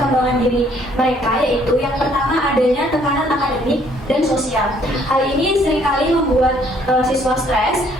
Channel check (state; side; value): normal; both; correlation 0.63